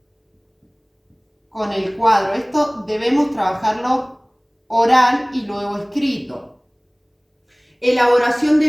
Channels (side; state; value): both; identical; correlation 1.00